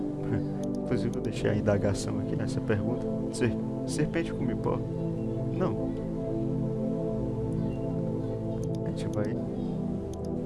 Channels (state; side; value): identical; both; correlation 1.00